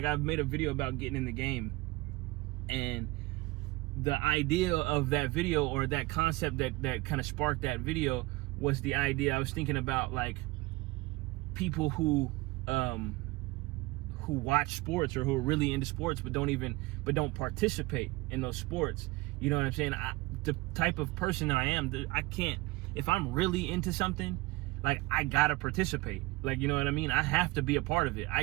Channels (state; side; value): quieter; left; 21.6 dB